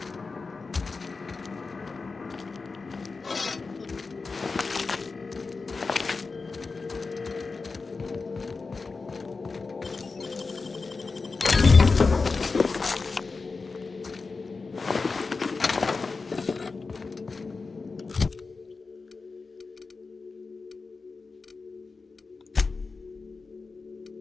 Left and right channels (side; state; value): right; quieter; 4.2 dB